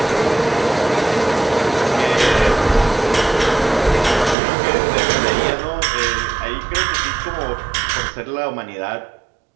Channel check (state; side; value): drops out; left; at 4.4 s